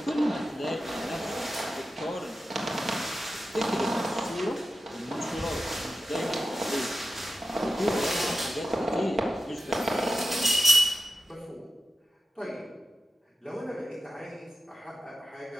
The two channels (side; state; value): both; normal; correlation 0.91